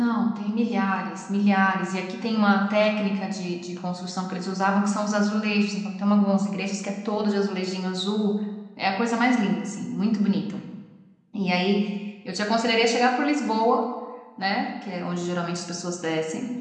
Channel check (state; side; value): identical; both; correlation 1.00